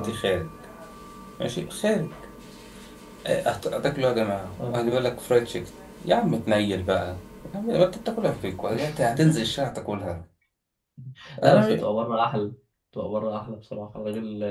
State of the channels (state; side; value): identical; both; correlation 1.00